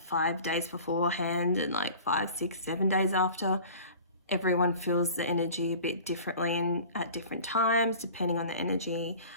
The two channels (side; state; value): both; inverted; correlation -0.42